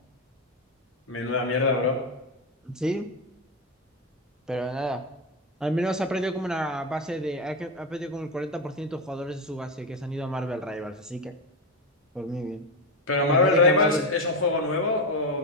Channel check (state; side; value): normal; both; correlation 0.13